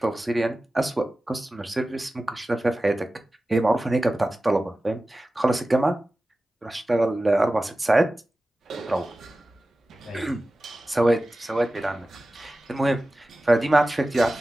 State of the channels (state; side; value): normal; both; correlation 0.95